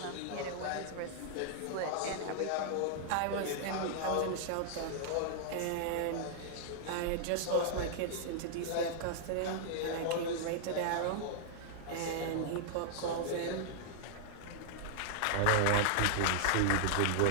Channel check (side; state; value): both; different; correlation -0.01